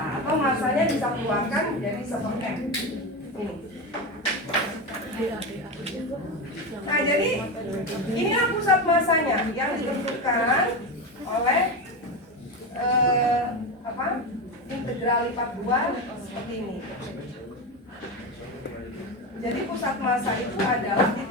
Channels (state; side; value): normal; both; correlation 0.18